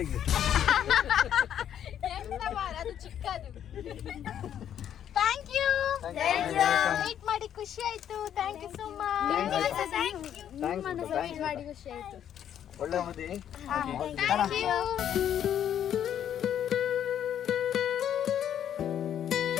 ಅದು ಚಿಕ್ಕದು. ಥ್ಯಾಂಕ್ ಯು, ವೇಟ್ ಮಾಡಿ ಖುಷಿ ಆಯ್ತು. Thank you so much. Wait ಮಾಡಿ ಖುಷಿ ಆಯ್ತು. ಒಳ್ಳೆ ಮದಿ. Thank you.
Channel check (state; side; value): quieter; right; 9.9 dB